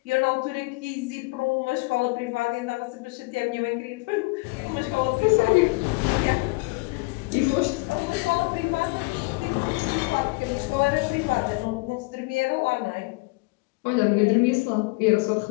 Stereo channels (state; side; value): quieter; right; 26.6 dB